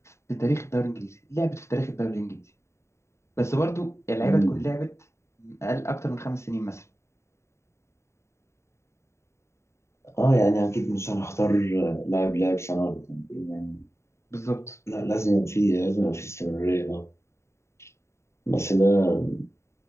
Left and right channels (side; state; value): right; late; 0.13 ms